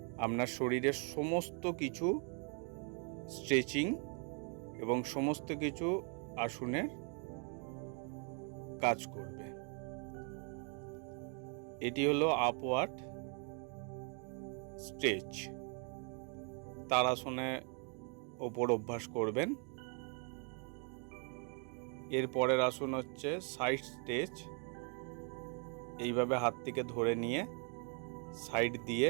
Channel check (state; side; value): quieter; left; 39.9 dB